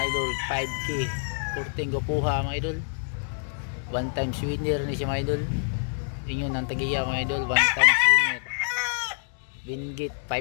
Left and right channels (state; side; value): silent; right; digital silence